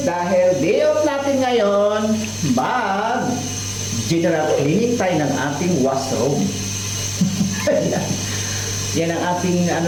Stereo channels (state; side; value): identical; both; correlation 1.00